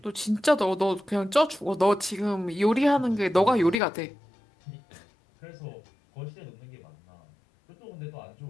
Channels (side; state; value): right; drops out; at 3.8 s